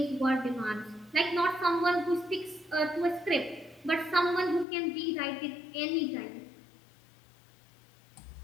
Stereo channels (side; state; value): right; drops out; at 4.7 s